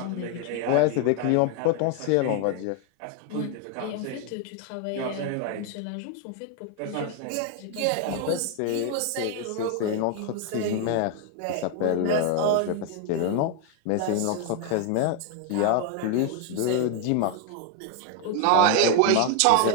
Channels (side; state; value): both; different; correlation 0.01